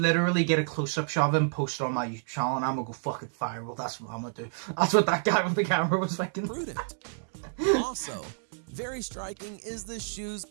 literally get a close-up shot of him, post it on my YouTube channel, and I'm gonna go fucking viral. That's what I'm gonna do. That's what that guy with the camera was thinking. Prudent. Also, very striking is the shoes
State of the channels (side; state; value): left; silent; digital silence